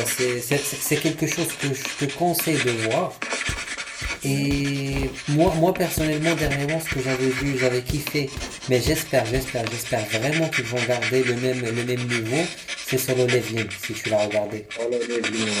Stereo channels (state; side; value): identical; both; correlation 1.00